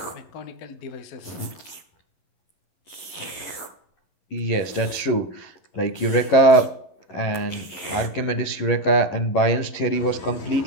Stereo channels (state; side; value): late; right; 11 ms